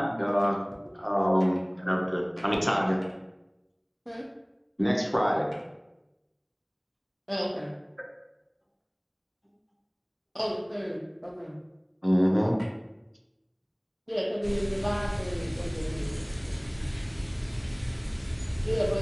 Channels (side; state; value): both; identical; correlation 1.00